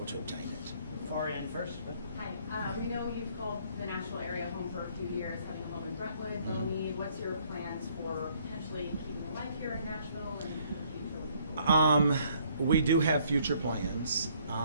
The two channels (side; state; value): both; inverted; correlation -0.64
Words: to obtain it. far end first. But Hi, we know you've called the Nashville area home for a few years, having a home in Brentwood, Bellmead. What's your plans for potentially keeping a life here in Nashville and in the future? We do have future plans.